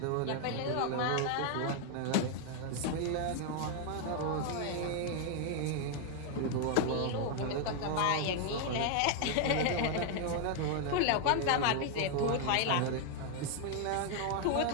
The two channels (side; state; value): both; different; correlation 0.00